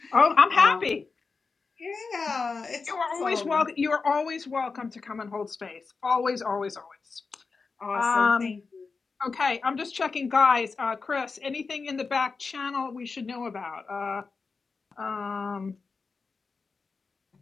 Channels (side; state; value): right; quieter; 4.6 dB